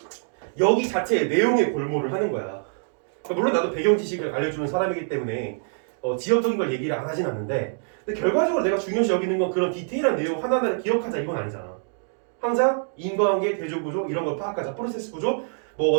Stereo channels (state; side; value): silent; left; digital silence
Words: 여기 자체의 내용의 골몰을 하는 거야. 물론 나도 배경 지식을 알려주는 사람이기 때문에 지엽적인 걸 얘기를 안 하진 않는데 근데 결과적으로 내가 중요시 여기는 건 그런 디테일한 내용 하나하나를 기억하자 이건 아니잖아. 항상 인과관계, 대조구조 이런 걸 파악하자. 프로세스 구조, 뭐